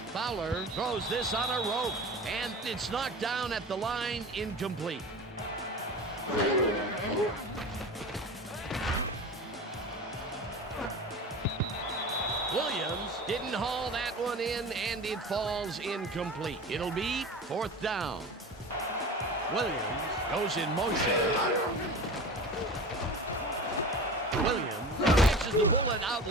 Fowler throws this on a rope and it's knocked down at the line. Incomplete. Williams didn't haul that one in and it falls incomplete. It'll be fourth down. Williams goes in motion. Williams catches the bullet out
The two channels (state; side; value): normal; both; correlation 0.34